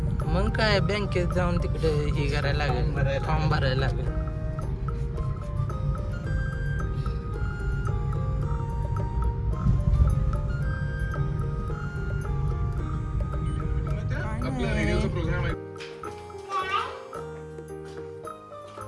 मग काय बँकेत जाऊन तिकडे हे करायला लागेल, फॉर्म भरायला लागेल. आपला रेडिओचा प्रोग्राम आहे.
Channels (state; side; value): identical; both; correlation 1.00